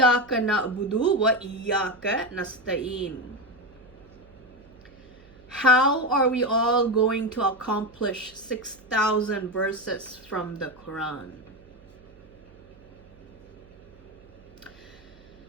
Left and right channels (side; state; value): right; noise; hum, 25 dB below the sound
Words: na'budu wa iyyaka nasta'in. How are we all going to accomplish 6,000 verses from the Quran?